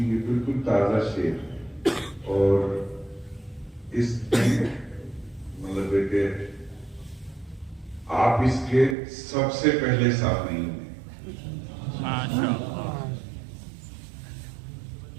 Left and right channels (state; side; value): drops out; left; at 9.0 s